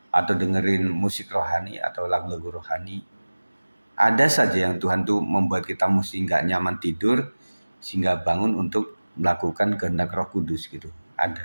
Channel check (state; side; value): inverted; both; correlation -1.00